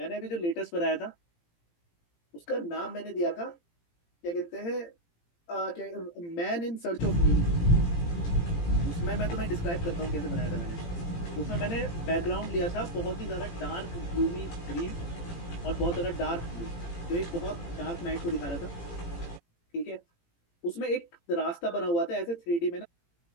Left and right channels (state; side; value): late; right; 18 ms